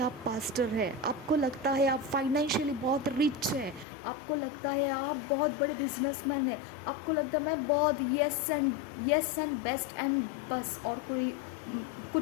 पास्टर हैं, आपको लगता है आप फाइनेंशियली बहुत रिच हैं, आपको लगता है आप बहुत बड़े बिजनेसमैन हैं, आपको लगता है मैं बहुत येस एंड बेस्ट एंड बस, और कोई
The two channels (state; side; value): drops out; right; at 3.9 s